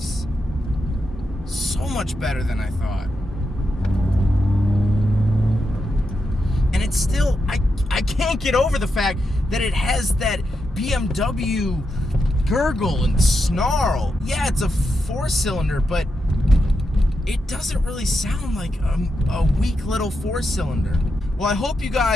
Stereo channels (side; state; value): both; normal; correlation 0.86